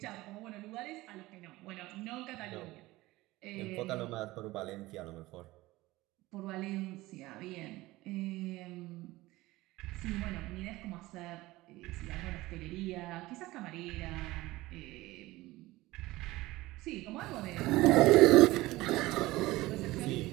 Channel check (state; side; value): quieter; left; 18.9 dB